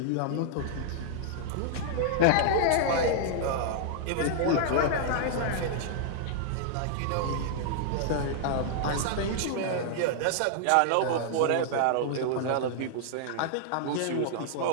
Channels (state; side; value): different; both; correlation -0.01